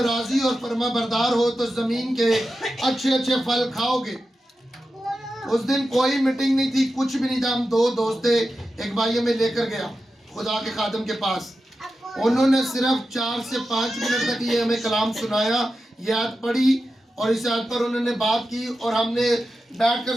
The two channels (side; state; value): both; normal; correlation 0.91